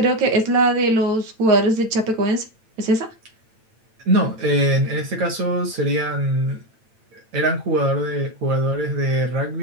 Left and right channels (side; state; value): left; late; 9.0 ms